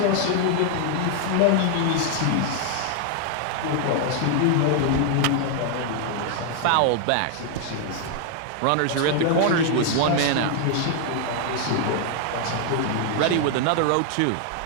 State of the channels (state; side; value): different; both; correlation 0.00